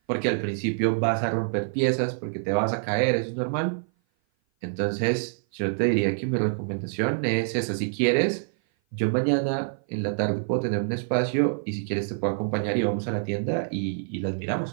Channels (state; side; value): silent; left; 56 dB below the other